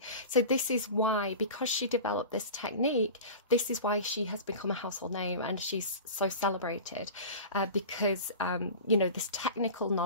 So this is why, because she developed this technique, this is why she has become a household name and she's so celebrated, because you know, this technical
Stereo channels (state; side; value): inverted; both; correlation -0.33